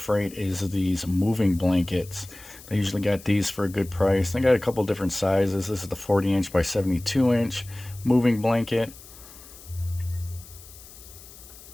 is these moving blankets. They usually got these for a good price. They got a couple different sizes. This is the 40-inch by 72-inch moving blanket.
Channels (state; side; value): noise; left; hiss, 19 dB below the sound